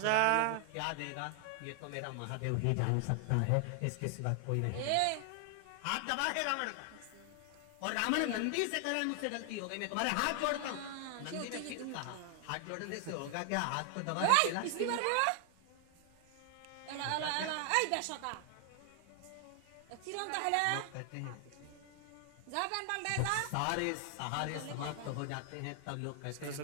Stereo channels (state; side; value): different; both; correlation 0.00